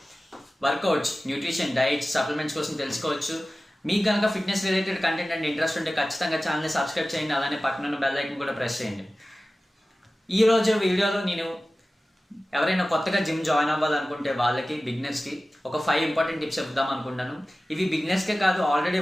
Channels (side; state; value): both; normal; correlation 0.96